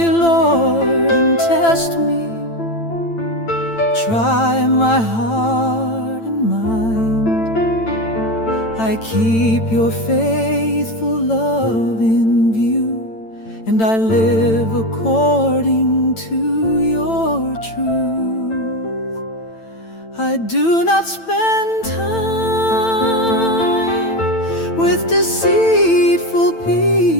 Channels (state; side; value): late; right; 8.9 ms